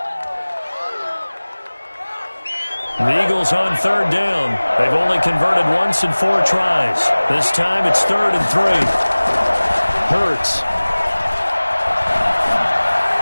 The Eagles on third down. They've only converted once in 4 tries. This time it's 3rd and 3. Hurts.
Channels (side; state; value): both; inverted; correlation -1.00